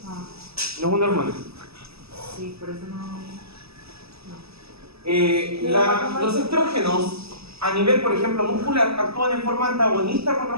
No es una hormona. Sí, por eso no. Los estrógenos, a nivel, por ejemplo, muscular, actúan en forma antagonista con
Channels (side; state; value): left; late; 0.78 ms